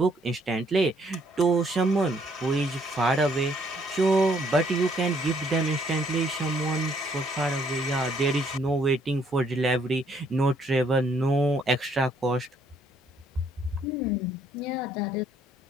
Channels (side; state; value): both; normal; correlation 0.67